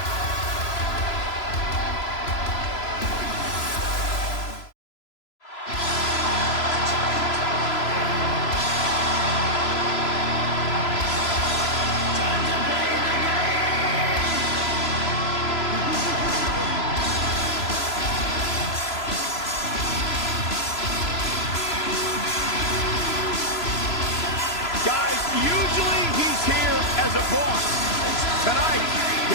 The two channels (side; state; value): right; late; 3.0 ms